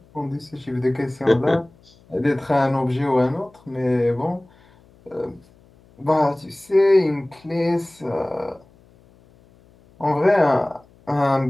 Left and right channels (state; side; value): noise; left; hum, 29 dB below the sound